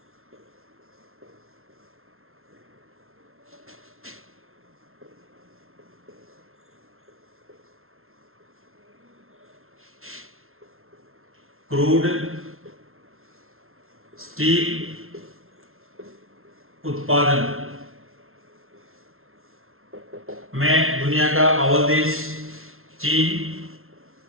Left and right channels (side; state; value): left; late; 0.62 ms